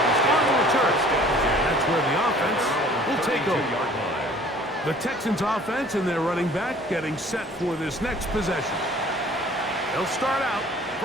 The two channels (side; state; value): both; normal; correlation 0.51